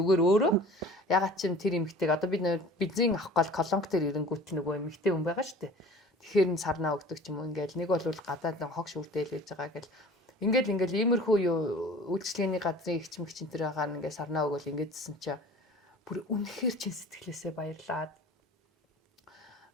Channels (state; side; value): normal; both; correlation 0.44